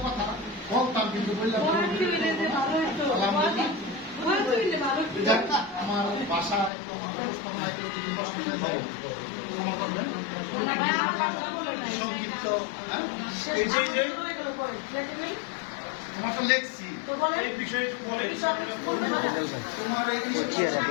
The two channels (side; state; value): right; drops out; at 6.7 s